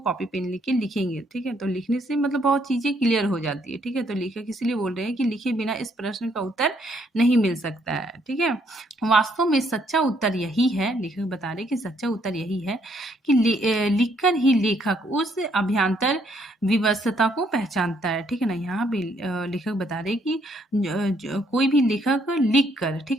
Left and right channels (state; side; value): normal; both; correlation 0.70